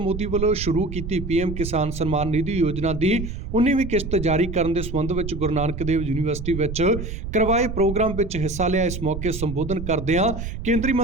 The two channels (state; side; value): noise; right; rumble, 7 dB below the sound